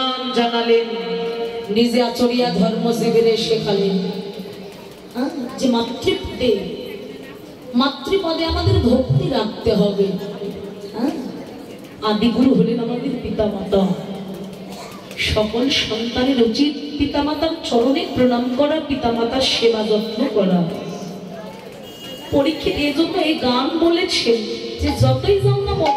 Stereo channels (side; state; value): both; identical; correlation 1.00